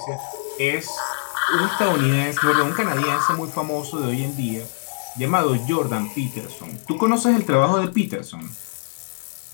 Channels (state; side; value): silent; right; digital silence